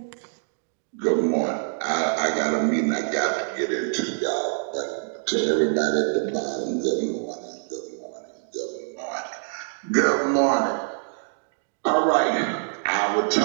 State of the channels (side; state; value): left; silent; digital silence